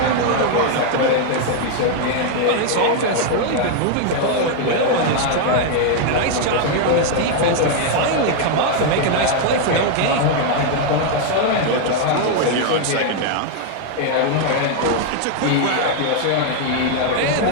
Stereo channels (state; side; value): different; both; correlation 0.00